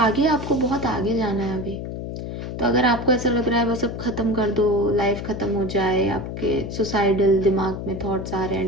आपको बहुत आगे जाना है अभी। तो अगर आपको ऐसा लग रहा है बस अब ख़त्म कर दो, लाइफ ख़त्म हो जाए, आपके सुसाइडल दिमाग में थॉट्स आ रहे हैं,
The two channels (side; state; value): left; noise; hum, 7 dB below the sound